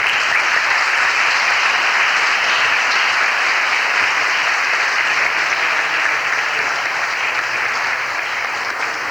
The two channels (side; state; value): left; noise; hiss, 29 dB below the sound